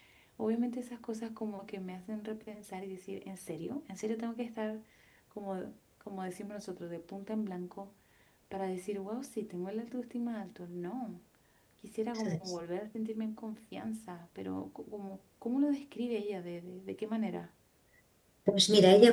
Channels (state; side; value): identical; both; correlation 1.00